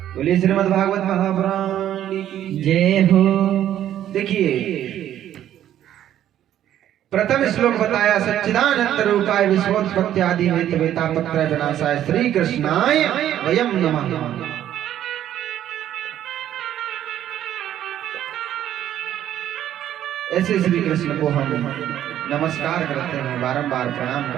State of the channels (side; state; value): left; quieter; 11.4 dB